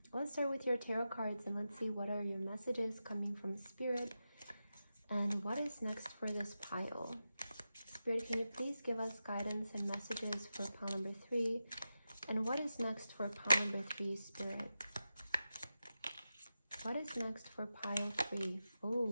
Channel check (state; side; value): inverted; both; correlation -0.92